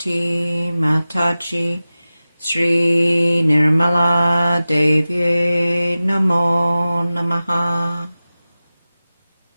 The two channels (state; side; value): inverted; both; correlation -0.96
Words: Mataji Shri Nirmala Devi Namo Namaha.